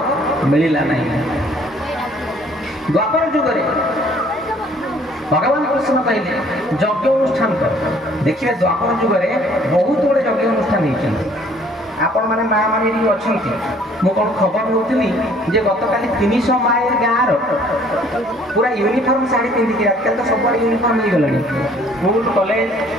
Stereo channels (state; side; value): normal; both; correlation 0.58